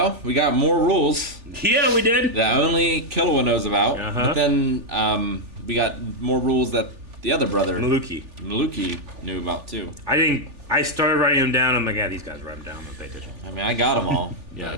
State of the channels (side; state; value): left; late; 3.4 ms